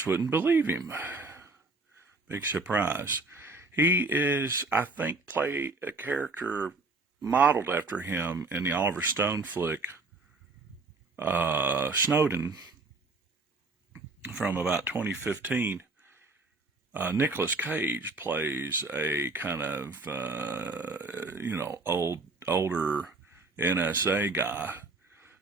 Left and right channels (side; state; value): left; quieter; 3.4 dB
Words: wouldn't believe him. Big surprise. He is, I think, play a character modeled after him in the Oliver Stone flick, Snowden, from about 2015. Nicolas Cage plays a kind of, older NSA guy